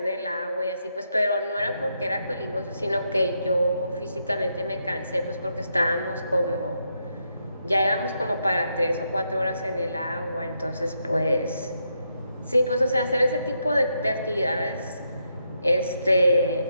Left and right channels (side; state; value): both; inverted; correlation -0.80